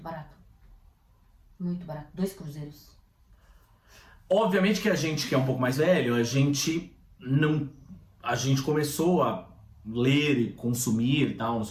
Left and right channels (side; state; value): both; identical; correlation 1.00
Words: barato. Muito barato. 2 cruzeiros. Obviamente que a gente que é um pouco mais velho, a gente começou a ler e consumir e tal, não